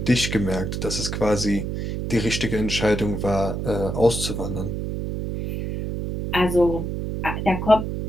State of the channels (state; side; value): noise; right; hum, 3 dB below the sound